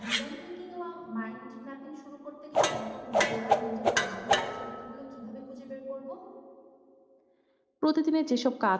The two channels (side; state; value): both; identical; correlation 1.00